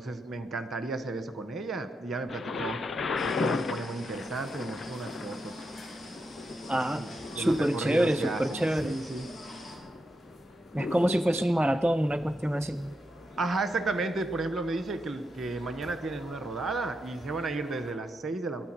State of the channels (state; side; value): normal; both; correlation 0.85